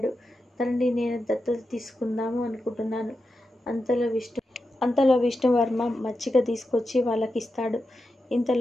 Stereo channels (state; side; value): normal; both; correlation 0.89